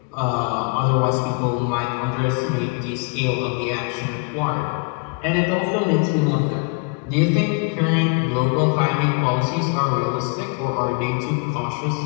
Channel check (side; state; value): right; quieter; 33.0 dB